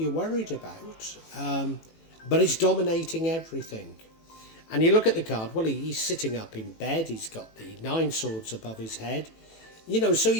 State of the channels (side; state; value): right; late; 18 ms